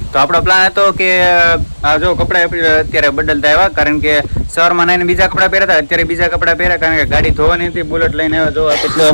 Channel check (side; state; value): both; inverted; correlation -1.00